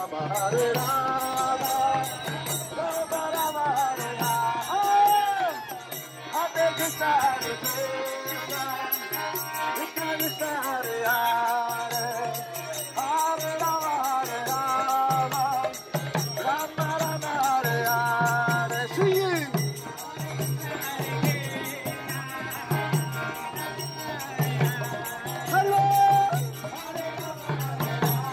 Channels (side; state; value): both; identical; correlation 1.00